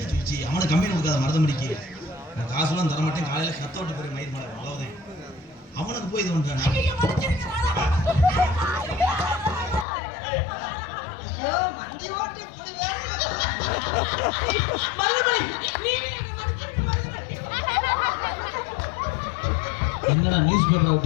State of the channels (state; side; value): drops out; right; at 9.9 s